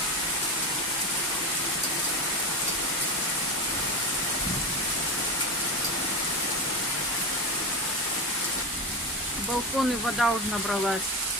В балконы вода уже набралась.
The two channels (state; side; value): normal; both; correlation 0.20